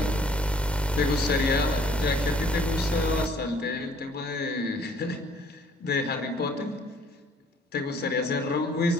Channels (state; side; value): normal; both; correlation 0.59